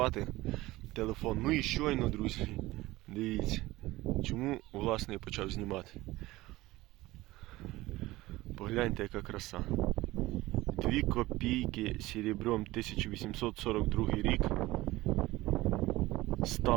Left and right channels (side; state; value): left; quieter; 18.5 dB